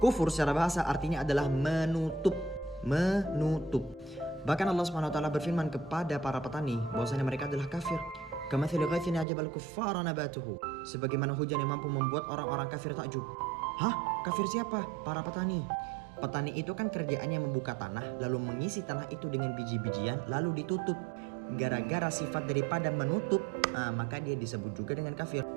Kufur secara bahasa artinya adalah menutup. Menutup. Bahkan Allah Subhanahu wa Ta'ala berfirman kepada para petani bahwasanya mereka adalah kafir. Kamathali ghaithin ajabal kuffara nabatuhu. Sebagaimana hujan yang mampu membuat orang-orang kafir takjub. Hah? Kafir siapa? Para petani. Petani itu kan kerjaannya membuka tanah, lalu mengisi tanah itu dengan biji-bijian, lalu ditutup. Gara-gara sifat daripada menutup, maka dia disebut juga dengan kafir.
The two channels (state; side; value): drops out; left; at 9.2 s